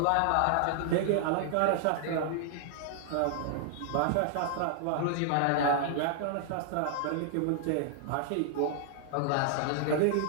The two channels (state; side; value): different; both; correlation -0.01